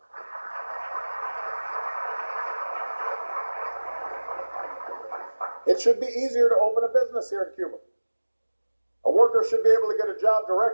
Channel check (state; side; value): inverted; both; correlation -1.00